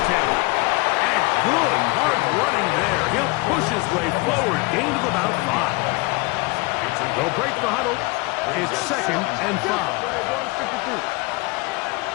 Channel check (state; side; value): quieter; right; 25.0 dB